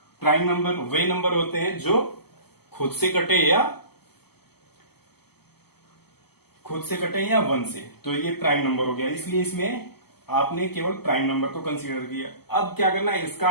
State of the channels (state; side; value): late; right; 0.96 ms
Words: प्राइम नंबर वे नंबर होते हैं जो खुद से कटे या 1 से, तो ये प्राइम नंबर हो गया, इसलिए इसमें आपने केवल प्राइम नंबर को कंसीडर किया। अब क्या करना है, इसका